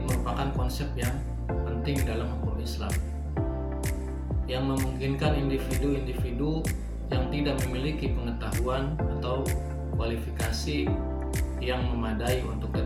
merupakan konsep yang penting dalam hukum Islam yang memungkinkan individu-individu yang tidak memiliki pengetahuan atau kualifikasi yang memadai untuk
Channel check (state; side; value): identical; both; correlation 1.00